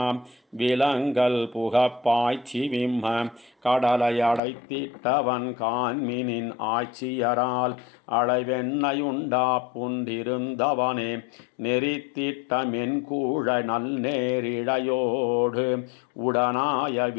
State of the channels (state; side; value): drops out; right; at 4.4 s